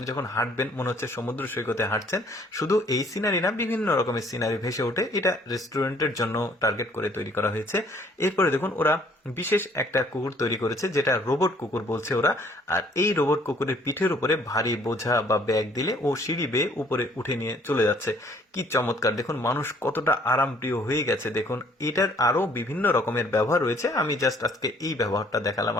যখন হাঁটবেন মনে হচ্ছে সমুদ্র সৈকতে হাঁটছেন। শুধু এই সিনারি না, বিভিন্ন রকমের সিনারি ভেসে ওঠে। এটা রেস্টুরেন্টের জন্য টার্গেট করে তৈরি করা হয়েছে। এরপরে দেখুন ওরা বিশেষ একটা কুকুর তৈরি করেছে, যেটা রোবট কুকুর বলছে ওরা। আর এই রোবট কুকুরের পিঠের উপরে ভারী বোঝা বা ব্যাগ দিলে ও সিঁড়ি বেয়ে উপরে উঠে নিয়ে চলে যাচ্ছে। কি চমৎকার! দেখুন মানুষ কতটা আরামপ্রিয় হয়ে গেছে। দেখুন এটার আরো বিভিন্ন রকমের ব্যবহার রয়েছে, আমি জাস্ট আজকে এই ব্যবহারটা দেখালাম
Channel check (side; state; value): both; normal; correlation 0.60